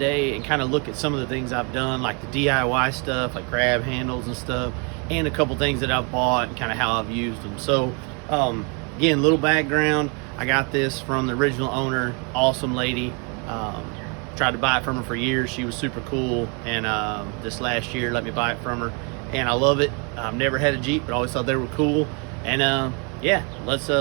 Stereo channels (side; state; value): left; quieter; 34.7 dB